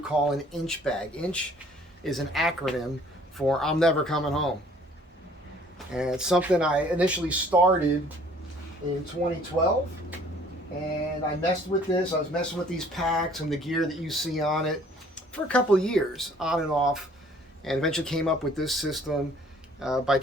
call an inch bag. Inch is an acronym for I'm never coming home. And it's something I initially started in 2012. And I messed with this. I was messing with these packs and the gear that you see on it for a couple of years, on and off. And eventually came up with this system by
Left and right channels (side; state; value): both; normal; correlation 0.56